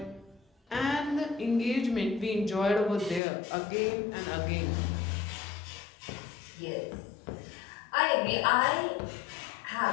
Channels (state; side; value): drops out; right; at 3.2 s